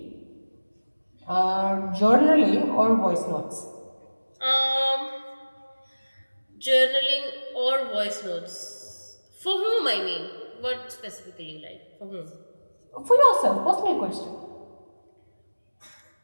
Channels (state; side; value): inverted; both; correlation -1.00